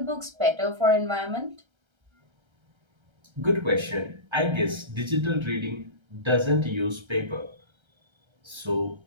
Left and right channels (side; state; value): left; late; 1.3 ms